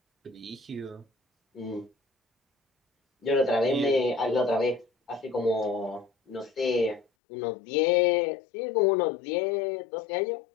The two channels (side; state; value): right; drops out; at 7.1 s